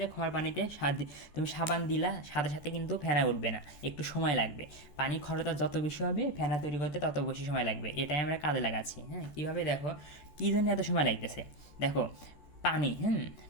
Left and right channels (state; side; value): late; right; 14 ms